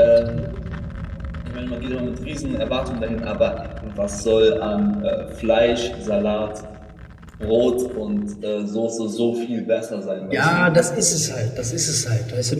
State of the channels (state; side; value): identical; both; correlation 1.00